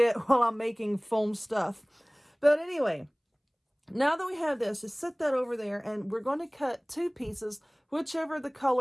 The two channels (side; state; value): both; identical; correlation 1.00